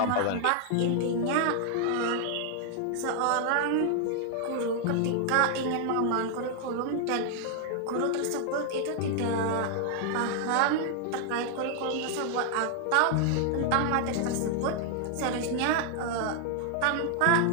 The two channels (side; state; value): both; different; correlation 0.00